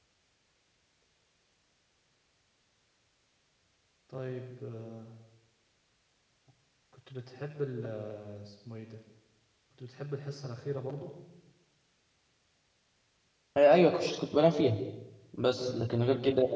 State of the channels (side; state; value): both; identical; correlation 1.00